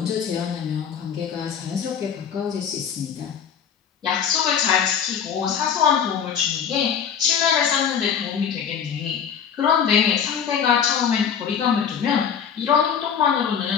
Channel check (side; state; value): right; quieter; 7.6 dB